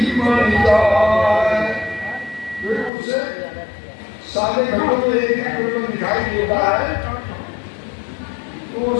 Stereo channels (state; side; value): drops out; right; at 2.9 s